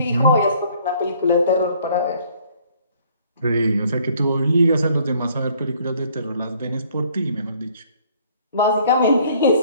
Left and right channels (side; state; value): both; inverted; correlation -0.60